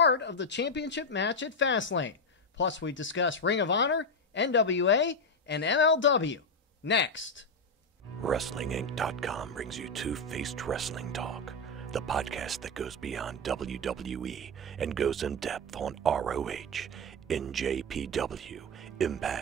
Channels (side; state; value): both; normal; correlation 0.08